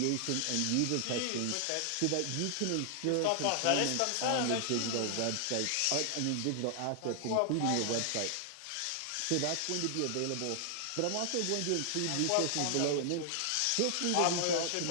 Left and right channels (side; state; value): both; different; correlation 0.00